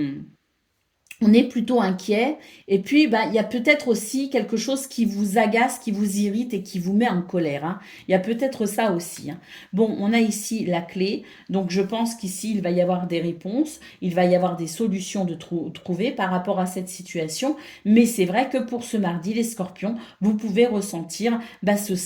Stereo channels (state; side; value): identical; both; correlation 1.00